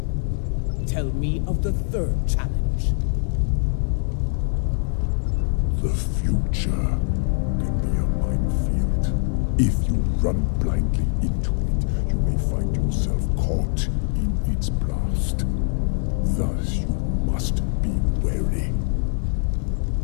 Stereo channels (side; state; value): right; silent; 62 dB below the other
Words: Tell me of the third challenge. The future can be a minefield. If you run blindly into it, you may find yourself caught in its blast. Thus, you must be wary.